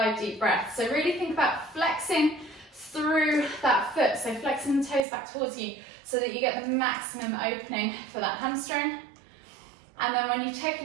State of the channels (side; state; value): left; drops out; at 5.1 s